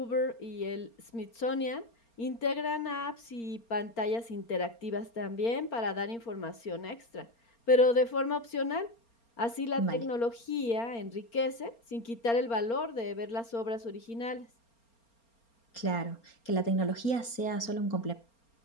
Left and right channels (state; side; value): late; right; 4.3 ms